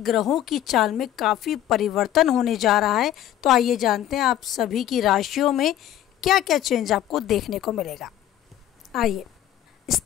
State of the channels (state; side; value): quieter; right; 12.0 dB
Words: की चाल में काफ़ी परिवर्तन होने जा रहा है। तो आइए जानते हैं आप सभी की राशियों में क्या क्या चेंज आपको देखने को मिलेगा। आइए